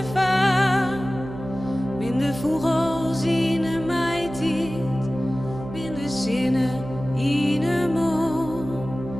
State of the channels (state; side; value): noise; right; hum, 11 dB below the sound